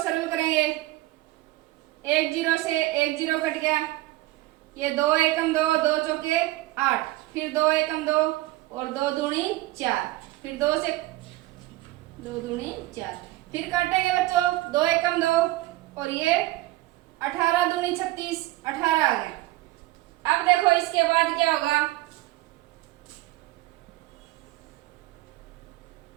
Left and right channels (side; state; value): left; quieter; 18.2 dB